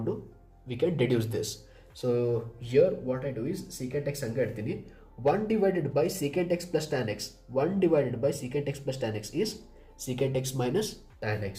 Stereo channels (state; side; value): identical; both; correlation 1.00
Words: we can deduce this. So here what I do is secant x ಹಂಗೆ ಇಡ್ತೀನಿ, 1 divided by secant x plus tan x, 1 divided by secant x plus tan x is secant x minus tan x,